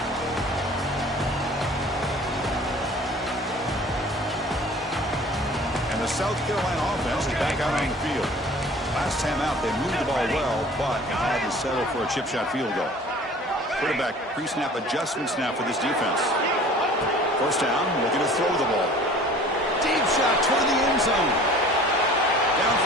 South Carolina offense is back out on the field. Last time out, they moved the ball well, but had to settle for a chip shot field goal. Quarterback pre-snap adjustments now for this defense. 1st down, looking to throw the ball. Deep shot toward the end zone.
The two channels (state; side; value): normal; both; correlation 0.47